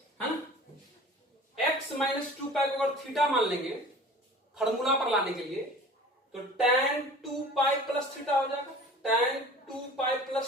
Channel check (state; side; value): normal; both; correlation 0.43